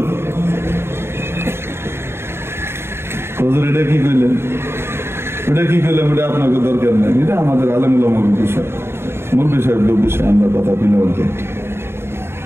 হুজুর এটা কি কইলেন? ওটা কি করলাম? ওটা আপনাকে দরকার নেই, এটা আমাদের আলেমুল আমাদের বিষয়, মূল বিষয় বিষয় আমরা কথা বলে বলতে।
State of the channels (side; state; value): left; late; 0.12 ms